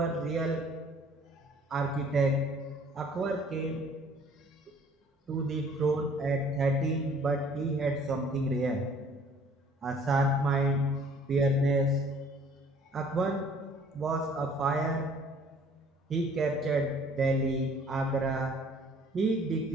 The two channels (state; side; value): normal; both; correlation 0.55